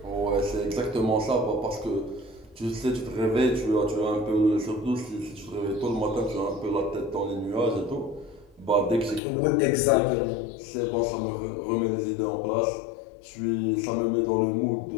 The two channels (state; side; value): drops out; right; at 9.2 s